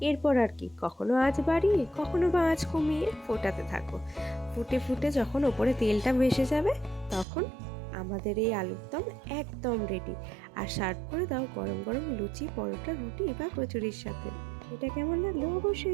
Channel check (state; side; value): drops out; left; at 7.2 s